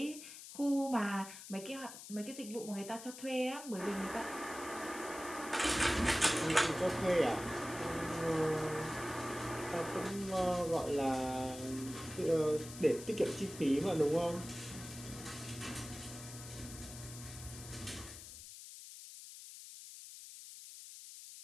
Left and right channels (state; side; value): noise; left; hiss, 13 dB below the sound